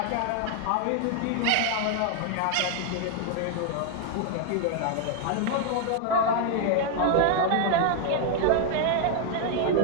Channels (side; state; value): both; different; correlation 0.00